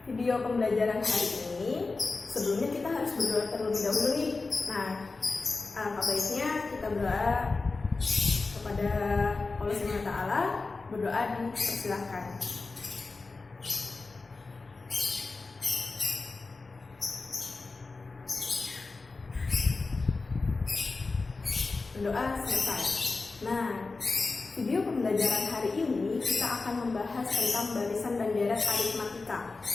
video pembelajaran hari ini, sebelumnya kita harus berdoa terlebih dahulu nih. Nah, apa baiknya kita berdoa kepada Allah Subhanahu wa Ta'ala. Berdoa dipersilahkan. Berdoa selesai. Nah, video pembelajaran hari ini kita akan membahas tentang barisan dan deret aritmatika.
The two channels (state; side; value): quieter; right; 3.8 dB